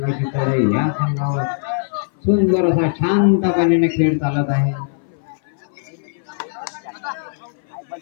चढाई या संघावर. सुंदर असा शांतपणे खेळ चालत आहे.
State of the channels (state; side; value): silent; right; 60 dB below the other